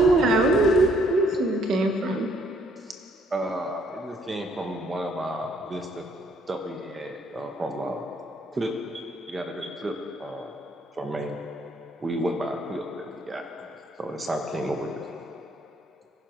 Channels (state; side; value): normal; both; correlation 0.66